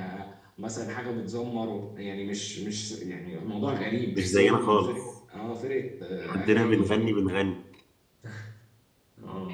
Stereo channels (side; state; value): both; identical; correlation 1.00